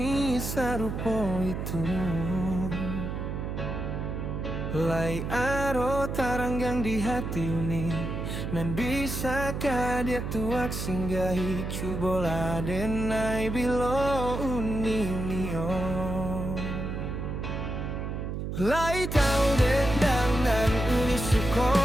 sarupo itu. Lai aro taranggang di hati uni, nan bisakah dia tuak singgahi cubola denai bilo uni nio. Lai tahu dendang nan uni suko,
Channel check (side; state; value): right; noise; hum, 4 dB below the sound